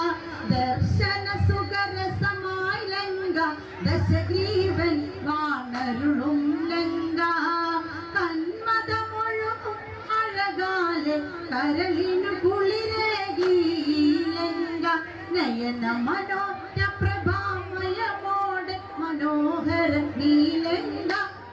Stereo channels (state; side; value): identical; both; correlation 1.00